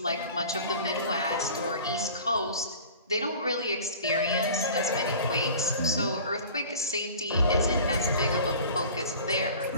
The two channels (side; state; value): both; inverted; correlation -0.43